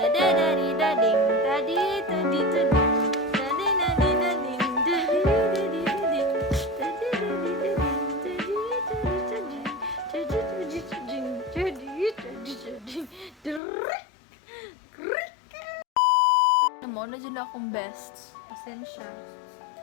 tadi-tadi-tading, tadadadidading, tadi-tadi-tading, tadi-tadi-tading, tadi-tadi-tading, tadi-tadi-tading, Amo na dyan akong best. Pasensya.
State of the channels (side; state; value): right; drops out; at 13.6 s